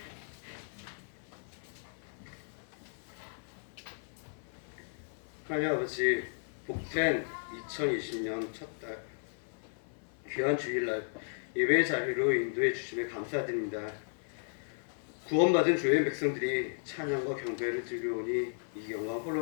하나님 아버지, 복된 2020년 첫 달 귀한 주일날 예배의 자리로 인도해 주심에 감사드립니다. 구원받은 주의 백성들이 찬양과 경배를 드리오니 이 영광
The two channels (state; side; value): silent; right; 55 dB below the other